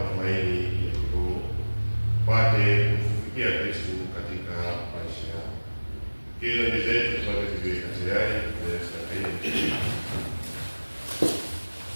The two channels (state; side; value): inverted; both; correlation -1.00